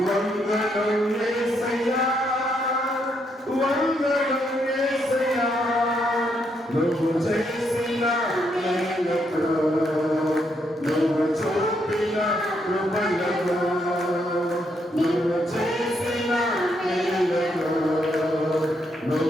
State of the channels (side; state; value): both; normal; correlation 0.76